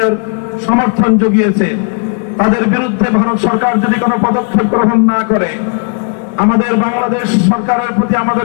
সমর্থন জুগিয়েছে, তাদের বিরুদ্ধে ভারত সরকার যদি কোনো পদক্ষেপ গ্রহণ না করে, আমাদের বাংলাদেশ সরকারের প্রতি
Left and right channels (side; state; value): right; quieter; 39.2 dB